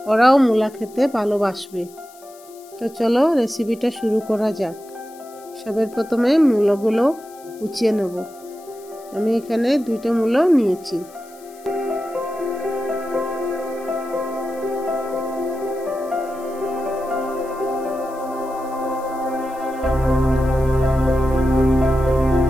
ওরাও মূলা খেতে ভালোবাসবে। তো চলো রেসিপিটা শুরু করা যাক। সবার প্রথমে মূলাগুলো কুচিয়ে নেব। আমি এখানে 2টা মূলা নিয়েছি।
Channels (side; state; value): left; noise; hiss, 24 dB below the sound